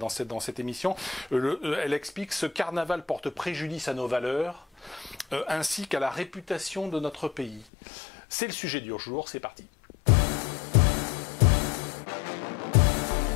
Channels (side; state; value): right; drops out; at 7.7 s